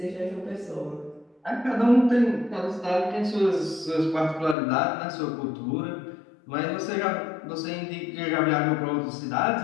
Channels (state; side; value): drops out; right; at 4.5 s